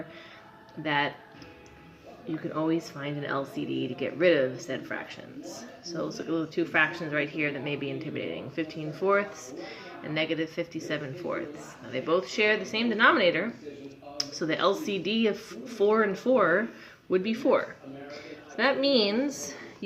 that you can always find an LCD to get rid of said fractions. So let's look at the two fractions right here that may be intimidating, 15/4 and negative 57/4. Now they both share the same denominator, so the LCD of 4 and 4 would be 4. So that means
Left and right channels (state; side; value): identical; both; correlation 1.00